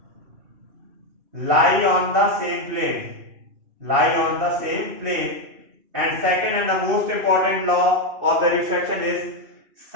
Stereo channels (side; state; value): left; late; 2.6 ms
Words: lie on the same plane. And second and the most important law of the refraction is